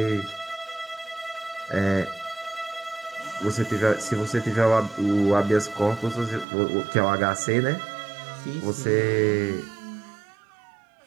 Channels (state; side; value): drops out; left; at 6.5 s